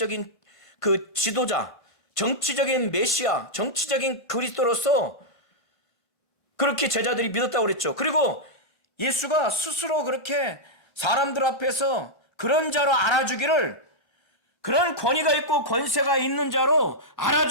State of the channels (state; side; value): normal; both; correlation -0.06